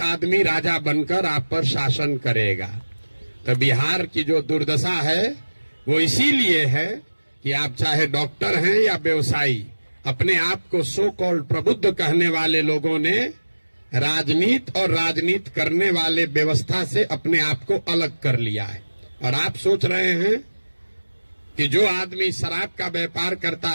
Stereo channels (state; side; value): inverted; both; correlation -1.00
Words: आदमी राजा बनकर आप पर शासन करेगा। तो बिहार की जो दुर्दशा है वो इसीलिए है कि आप चाहे डॉक्टर हैं या व्यवसायी, अपने आप को सो कॉल्ड प्रबुद्ध कहने वाले लोगों ने राजनीति और राजनीति करने वाले व्यवस्था से अपने आप को अलग कर लिया है। और आप सोच रहे हैं कि जो आदमी शराब का व्यापार करता